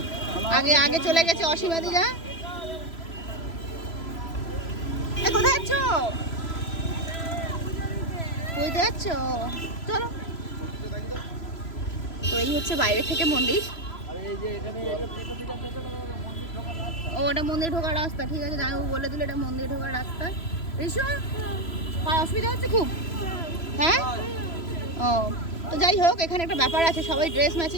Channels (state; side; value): late; right; 3.0 ms